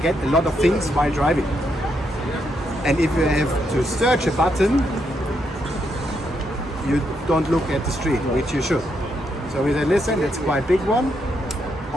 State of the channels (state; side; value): normal; both; correlation 0.79